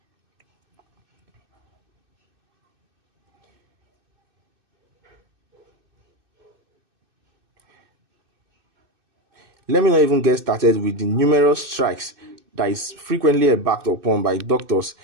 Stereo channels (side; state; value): left; late; 2.6 ms